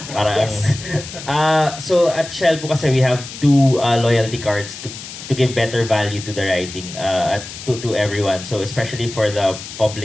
Parang, Yes. so at Shell po kasi we have two loyalty cards to give better value to the riding to everyone. So especially for the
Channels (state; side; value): noise; left; hiss, 12 dB below the sound